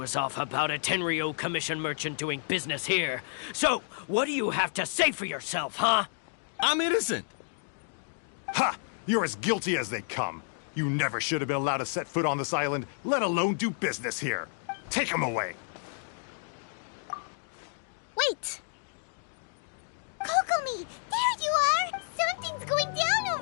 off about a Tenryo Commission merchant doing business here. So, what do you have to say for yourself, huh? I'm innocent. Ha! You're as guilty as they come. You never should have been allowed to set foot on this island, let alone do business here. Take him away. Wait! Kokomi, there you are! Something's going down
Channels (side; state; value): right; silent; digital silence